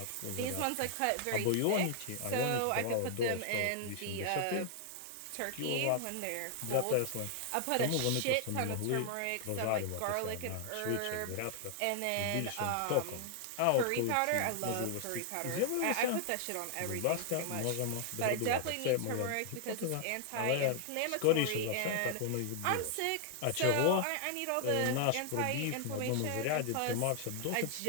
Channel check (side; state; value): both; different; correlation 0.00